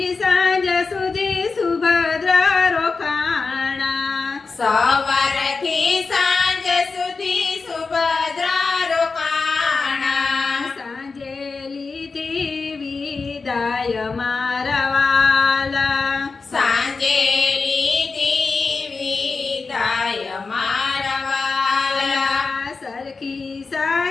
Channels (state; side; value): quieter; right; 4.4 dB